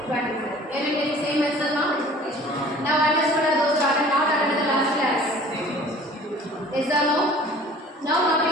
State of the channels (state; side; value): normal; both; correlation 0.48